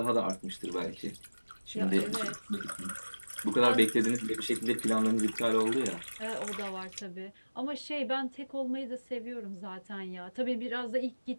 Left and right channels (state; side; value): inverted; both; correlation -1.00